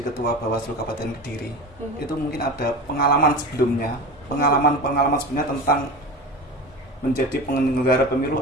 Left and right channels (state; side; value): normal; both; correlation 0.30